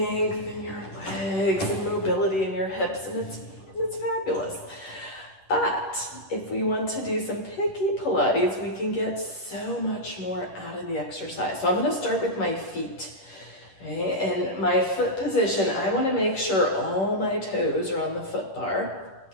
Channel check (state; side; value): late; right; 10 ms